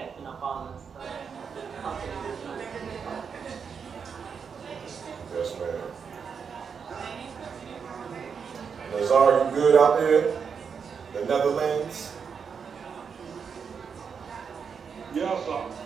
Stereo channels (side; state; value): left; quieter; 6.4 dB